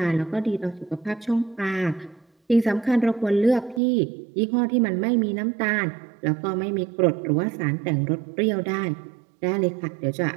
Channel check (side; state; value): left; drops out; at 3.8 s